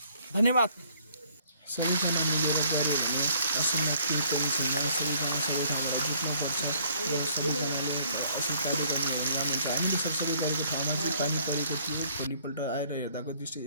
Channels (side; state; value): both; inverted; correlation -0.62